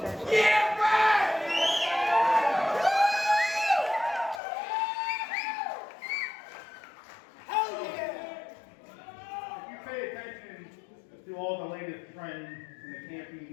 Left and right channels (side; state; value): right; drops out; at 4.4 s